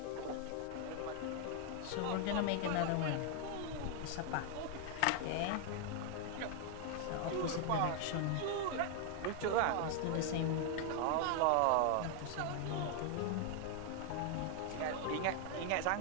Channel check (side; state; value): both; different; correlation 0.00